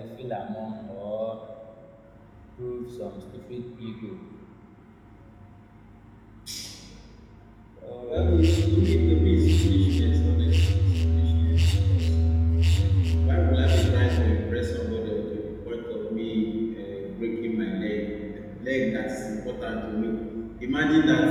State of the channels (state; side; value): identical; both; correlation 1.00